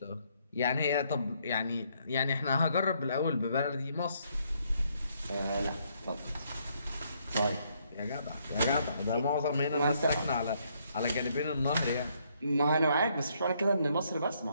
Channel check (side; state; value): both; inverted; correlation -0.71